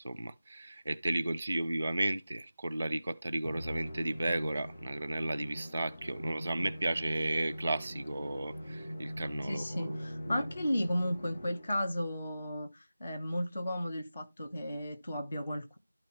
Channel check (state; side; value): inverted; both; correlation -0.94